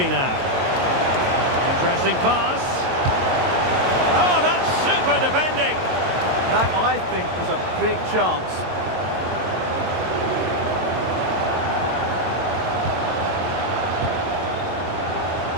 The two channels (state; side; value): late; left; 22 ms